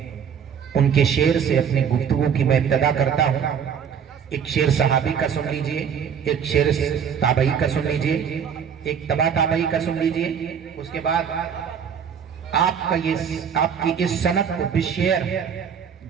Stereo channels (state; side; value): quieter; left; 7.5 dB